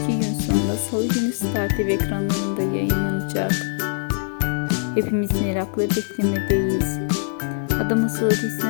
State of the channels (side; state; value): right; silent; digital silence